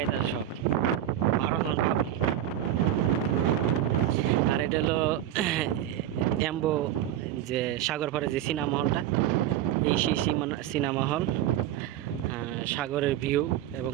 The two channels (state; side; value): quieter; left; 11.8 dB